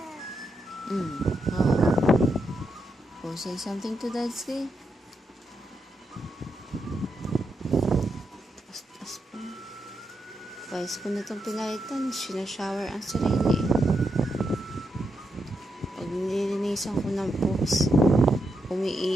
Oh, say something to Dadski. Tas pa. Guys, ko na itong pinalitan, sinashower ang sarili. Pag nililinisan ko ng poops,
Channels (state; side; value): normal; both; correlation 0.83